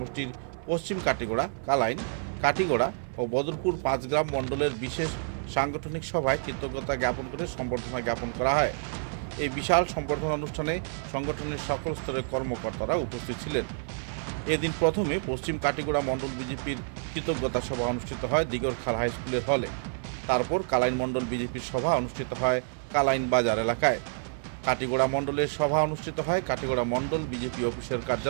পশ্চিম কাটিগড়া, কালাইন, কাটিগড়া ও বদরপুর 5 গ্রাম মণ্ডলের বিশেষ সাংগঠনিক সভায় কৃতজ্ঞতা জ্ঞাপন করে সম্বর্ধনা জ্ঞাপন করা হয়। এই বিশাল সম্বর্ধনা অনুষ্ঠানে সংগঠনের সকল স্তরের কর্মকর্তারা উপস্থিত ছিলেন। এদিন প্রথমে পশ্চিম কাটিগড়া মণ্ডল বিজেপির কৃতজ্ঞতা সভা অনুষ্ঠিত হয় দিগরখাল হাই স্কুলের হলে। তারপর কালাইন মণ্ডল বিজেপির সভা অনুষ্ঠিত হয় কালাইন বাজার এলাকায়। কাটিগড়া মণ্ডলের সভা অনুষ্ঠিত হয় কাটিগড়া মণ্ডল বিজেপি অফিসের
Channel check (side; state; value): left; silent; 59 dB below the other